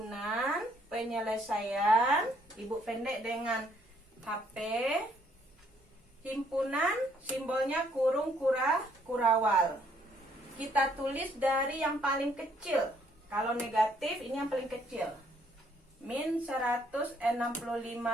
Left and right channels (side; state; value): both; normal; correlation 0.67